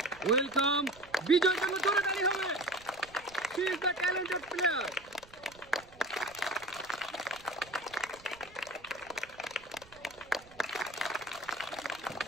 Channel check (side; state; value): right; noise; rumble, 24 dB below the sound